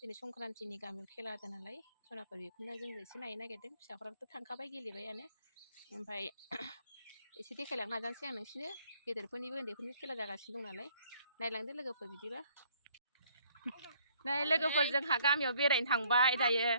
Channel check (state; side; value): inverted; both; correlation -0.63